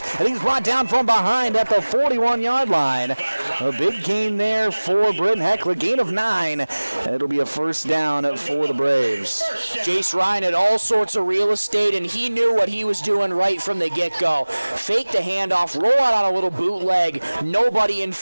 and he's brought down from behind at the 41-yard line. A big gain there for Britton-Hecla, gain of 9. It'll be a first down for the Braves. Jace Ryan had all sorts of real estate, and he knew what he was doing right from the get-go. Fake the handoff, roll out on a little bootleg, nobody in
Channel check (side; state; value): both; inverted; correlation -1.00